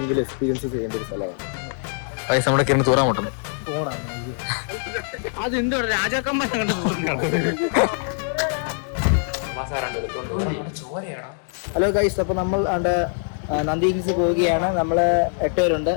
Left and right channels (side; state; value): right; silent; 63 dB below the other